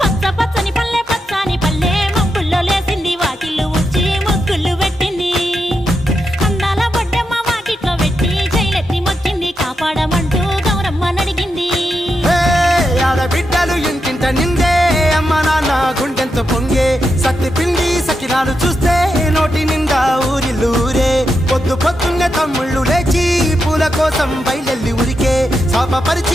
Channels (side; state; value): both; normal; correlation 0.86